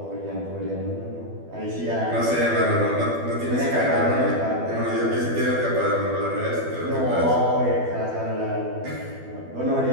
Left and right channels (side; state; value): left; late; 12 ms